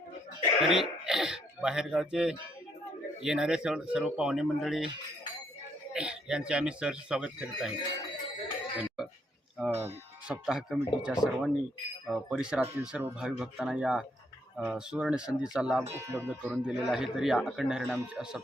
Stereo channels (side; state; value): both; normal; correlation 0.72